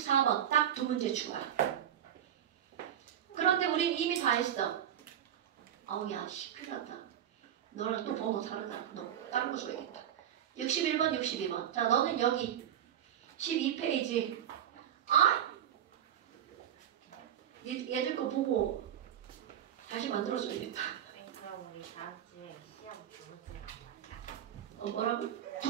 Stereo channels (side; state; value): left; quieter; 10.1 dB